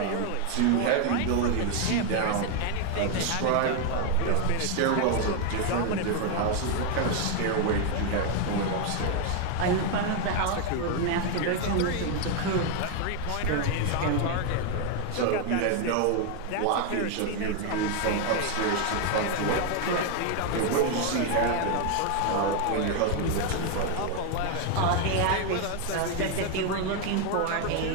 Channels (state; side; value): different; both; correlation 0.01